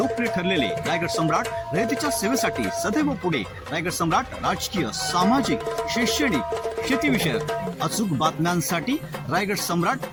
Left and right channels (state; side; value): identical; both; correlation 1.00